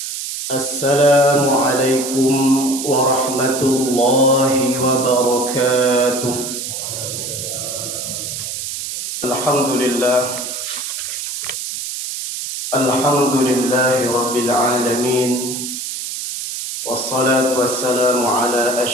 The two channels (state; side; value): noise; right; hiss, 6 dB below the sound